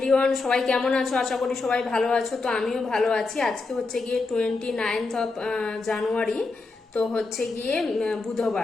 সবাই কেমন আছো? আশা করি সবাই ভালো আছো। তো আমিও ভালো আছি। আজকে হচ্ছে গিয়ে 29 জানুয়ারি। তো হচ্ছে গিয়ে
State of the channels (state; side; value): quieter; right; 3.8 dB